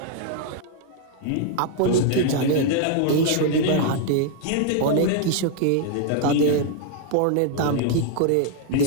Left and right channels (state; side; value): different; both; correlation 0.00